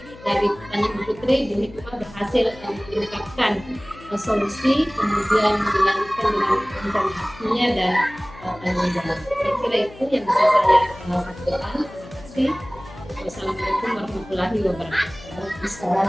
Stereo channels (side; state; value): left; noise; hum, 19 dB below the sound